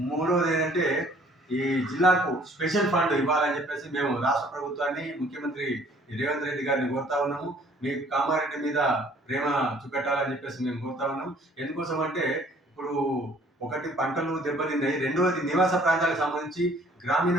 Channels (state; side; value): normal; both; correlation 0.57